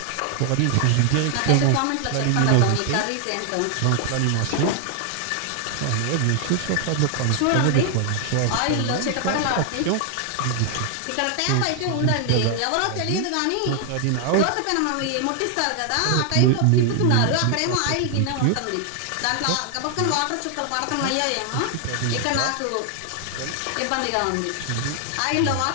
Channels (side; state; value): both; different; correlation 0.00